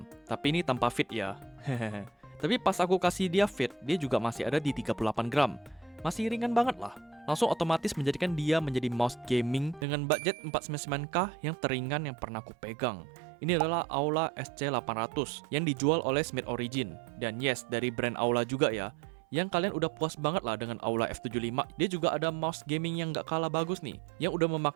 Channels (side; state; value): left; drops out; at 9.9 s